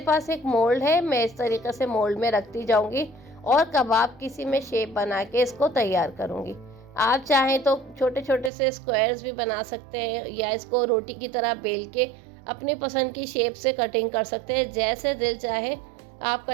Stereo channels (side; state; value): left; drops out; at 8.5 s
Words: पास एक मोल्ड है, मैं इस तरीके से मोल्ड में रखती जाऊँगी और कबाब किसी में शेप बना के इसको तैयार करूँगी। आप चाहें तो छोटे छोटे से स्क्वायर्स भी बना सकते हैं या इसको रोटी की तरह बेल के अपनी पसंद की शेप से कटिंग कर सकते हैं। जैसे दिल चाहे आप